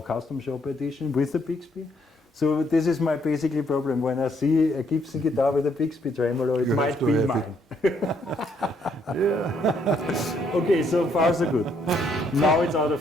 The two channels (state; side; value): normal; both; correlation 0.71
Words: custom shop edition with the Bixby. So this is my basically problem. When I see a Gibson guitar with a Bixby tremolo, it might be mine. Yeah. Okay, so far so good. Now it's out